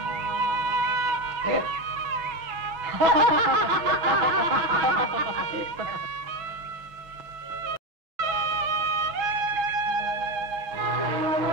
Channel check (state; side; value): late; left; 6.1 ms